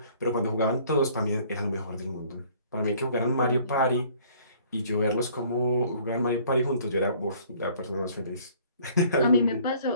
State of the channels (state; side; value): inverted; both; correlation -0.56